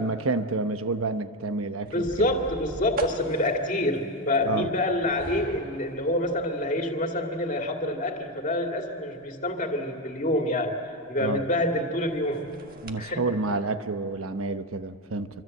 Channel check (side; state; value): both; normal; correlation 0.11